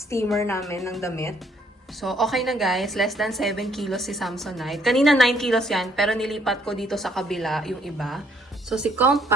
namin ng damit. So, okay na guys. Less than 7 kilos si Samsonite. Kanina 9 kilos yan, pero nilipat ko dito sa kabila yung iba. So, si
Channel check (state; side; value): normal; both; correlation 0.66